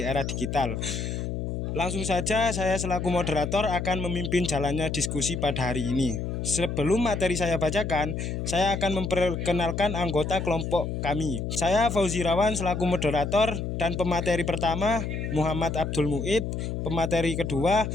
era digital. Langsung saja saya selaku moderator akan memimpin jalannya diskusi pada hari ini. Sebelum materi saya bacakan, saya akan memperkenalkan anggota kelompok kami. Saya Fauzi Rawan selaku moderator dan pemateri pertama Muhammad Abdul Muid, pemateri kedua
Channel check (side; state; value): left; noise; hum, 3 dB below the sound